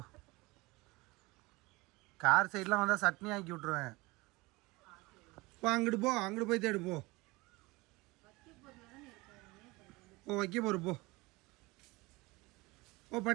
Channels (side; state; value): left; quieter; 22.9 dB